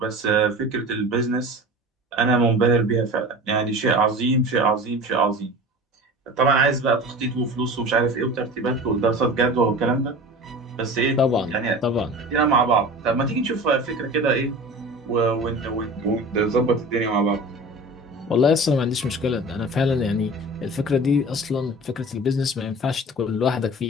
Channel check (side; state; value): both; normal; correlation 0.36